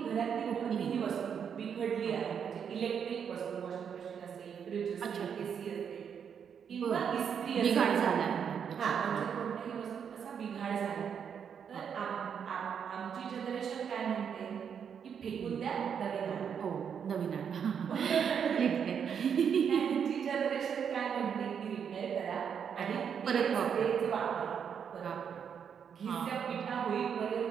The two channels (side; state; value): left; quieter; 7.5 dB